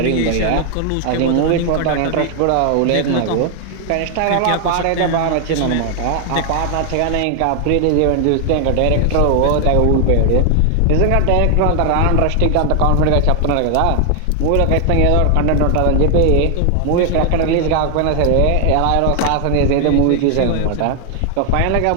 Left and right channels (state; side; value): different; both; correlation 0.00